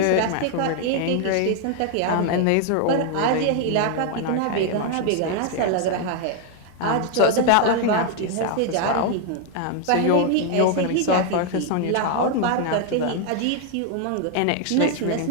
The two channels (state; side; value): different; both; correlation 0.00